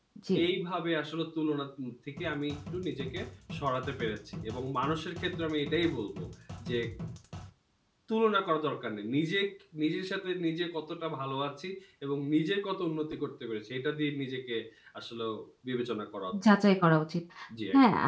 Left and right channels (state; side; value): identical; both; correlation 1.00